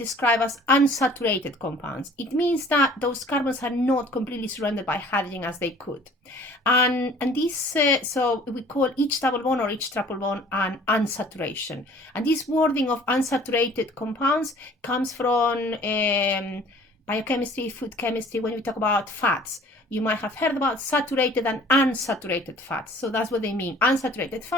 as unsaturated compounds. It means that those carbons are not completely surrounded by hydrogen as they could. And this, so we call each double bond or each triple bond an unsaturation. And this wording of unsaturated compounds comes from biochemistry, food chemistry, when we talk about fats. You might have heard about saturated and unsaturated fats. So that's what they mean. Unsaturated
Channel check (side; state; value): both; normal; correlation 0.51